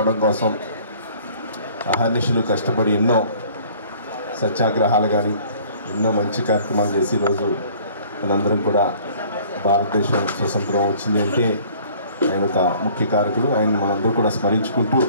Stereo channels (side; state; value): both; inverted; correlation -0.53